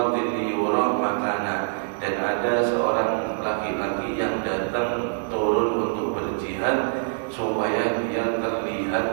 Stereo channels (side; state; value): left; silent; 62 dB below the other